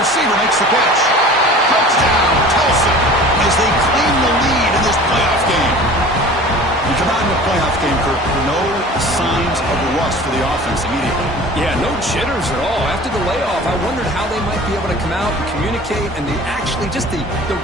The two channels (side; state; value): both; normal; correlation 0.42